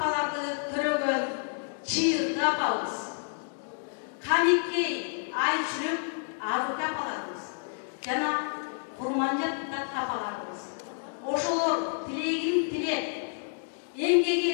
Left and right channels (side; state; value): right; silent; digital silence